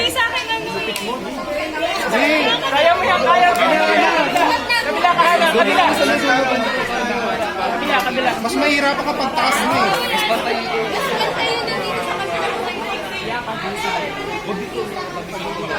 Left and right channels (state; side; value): identical; both; correlation 1.00